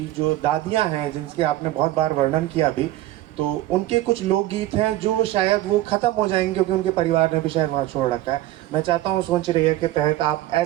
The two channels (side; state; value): left; quieter; 15.3 dB